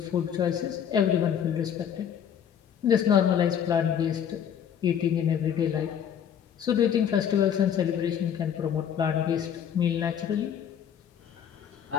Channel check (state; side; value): quieter; right; 8.8 dB